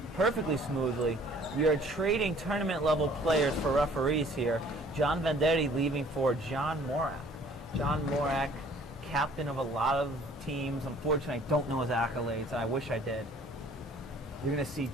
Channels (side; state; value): both; normal; correlation 0.55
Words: perfectly smoothly, we are trading tournament-level players for referees here. John Vendetti leaving for John Morak. John Morak, captain of a lot of teams. Unfortunately, I don't know his accolades, and I wish I did. You're going to see